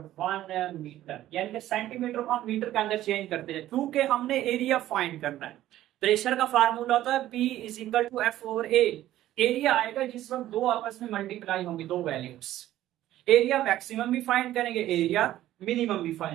मीटर, यानी कि सेंटीमीटर को हम मीटर के अंदर चेंज करते हैं क्योंकि हमने एरिया फाइंड करना है। प्रेशर का फार्मूला होता है P is equal to F over A। Area आएगा जिस वक्त दो आपस में मल्टीप्लाई होंगी, दो वैल्यूज। एरिया मैक्सिमम भी फाइंड करेंगे, एरिया मिनिमम भी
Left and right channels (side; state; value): left; quieter; 13.8 dB